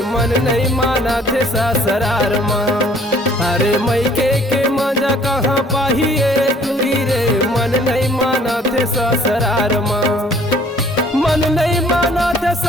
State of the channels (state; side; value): normal; both; correlation 0.57